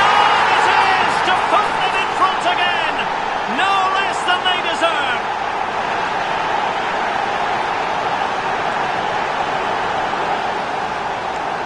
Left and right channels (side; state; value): both; identical; correlation 1.00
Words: it is! To put them in front again! No less than they deserve!